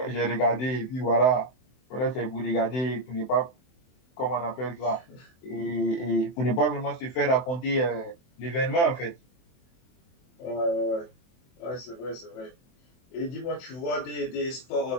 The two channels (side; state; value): right; late; 24 ms